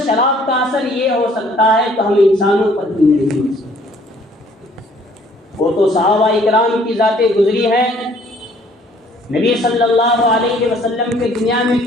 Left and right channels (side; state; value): both; normal; correlation 0.59